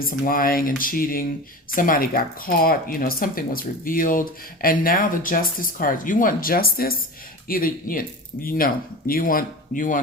some lying and cheating. Somebody got caught, something was revealed. And now the Justice card. You want justice? Either, you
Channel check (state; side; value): normal; both; correlation 0.31